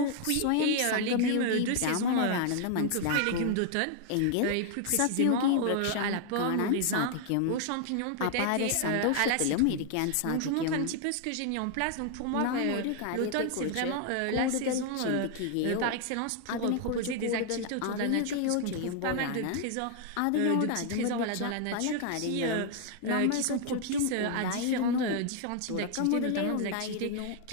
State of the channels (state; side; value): different; both; correlation 0.00